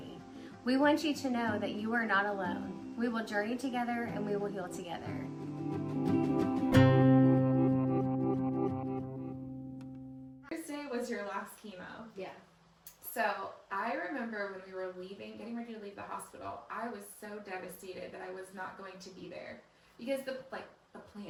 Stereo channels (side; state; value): both; identical; correlation 1.00